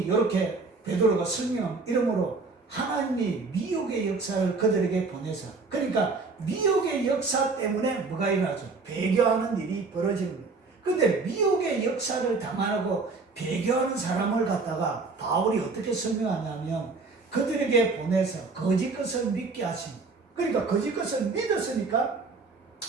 이렇게 베드로가 설명한 이름으로 하나님이 미혹의 역사를 그들에게 보내서, 그러니까 미혹의 역사 때문에 뭐가 일어나죠? 배교하는 일이 벌어지는 거예요. 그런데 미혹의 역사를 당하고 배교하는 사람을 갖다가 바울이 어떻게 설명하냐면, 그들에게 보내서 거짓 것을 믿게 하십니다. 그러니까 거짓 것을 믿었으니까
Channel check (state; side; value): quieter; left; 4.0 dB